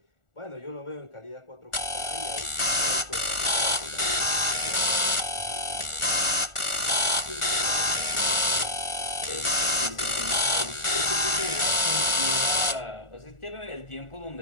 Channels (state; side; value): late; right; 1.4 ms